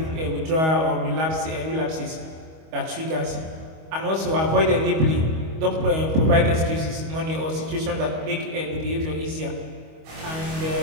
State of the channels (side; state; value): left; late; 25 ms